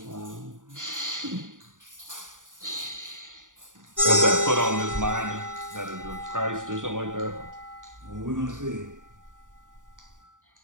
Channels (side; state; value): left; late; 0.88 ms